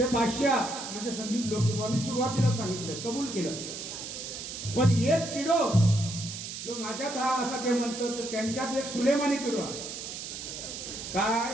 बादशाह म्हणजे संदीप लोकेबुवा. मी सुरुवातीला सांगितलं, कबूल केलं. पण एक किडो जो माझ्यात हा असा ते म्हणतो, तर त्यांच्यात एक सुलेमानी किडो आहे.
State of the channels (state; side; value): noise; right; hiss, 8 dB below the sound